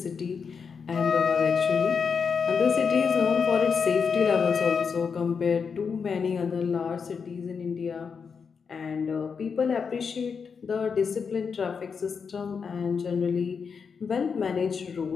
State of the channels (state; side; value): quieter; right; 5.9 dB